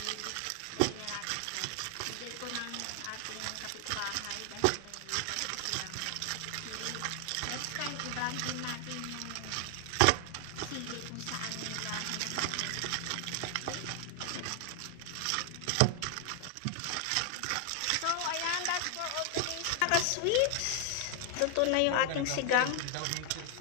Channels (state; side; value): different; both; correlation 0.00